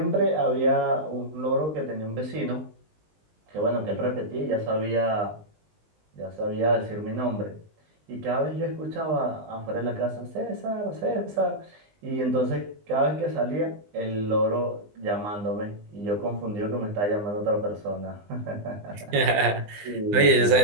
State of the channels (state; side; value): late; left; 19 ms